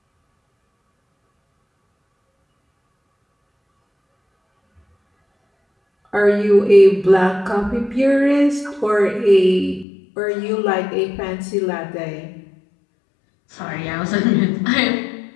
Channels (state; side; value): drops out; right; at 9.9 s